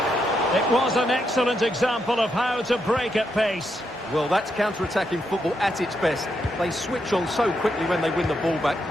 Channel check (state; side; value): normal; both; correlation 0.81